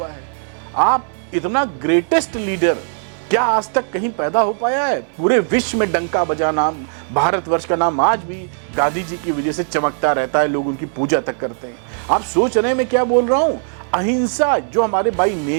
है। आप इतना ग्रेटेस्ट लीडर क्या आज तक कहीं पैदा हो पाया है? पूरे विश्व में डंका बजा नाम, भारतवर्ष का नाम आज भी गांधी जी की वजह से चमकता रहता है, लोग उनकी पूजा तक करते हैं। आप सोच रहे हैं मैं क्या बोल रहा हूं? अहिंसा जो हमारे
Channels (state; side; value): silent; left; digital silence